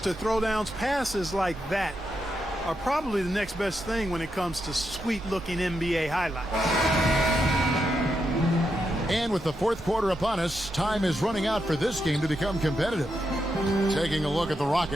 throwdowns, passes like that are probably the next best thing when it comes to sweet-looking NBA highlights. And with the fourth quarter upon us, time is running out for this game to become competitive. Taking a look at the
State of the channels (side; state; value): both; normal; correlation 0.84